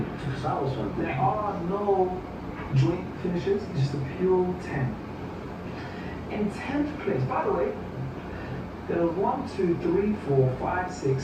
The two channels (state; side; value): identical; both; correlation 1.00